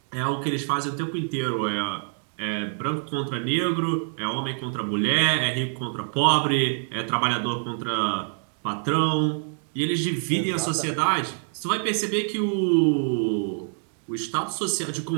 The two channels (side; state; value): left; silent; 61 dB below the other